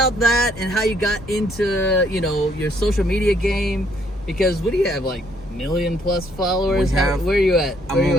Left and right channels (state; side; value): normal; both; correlation 0.68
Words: that and how you got into, your social media game. Because what do you have, like 1 million+ followers? Where are you at?